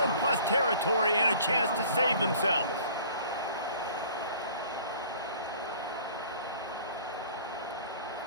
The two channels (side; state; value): both; inverted; correlation -0.50